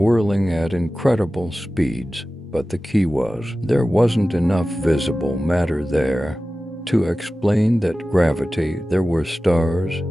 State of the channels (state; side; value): normal; both; correlation 0.95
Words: at incredible speeds, but the key was there wasn't enough visible matter there to explain that gravity. There were stars,